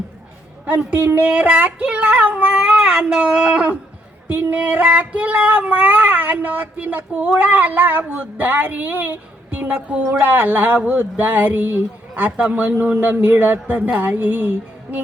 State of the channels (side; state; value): both; normal; correlation 0.72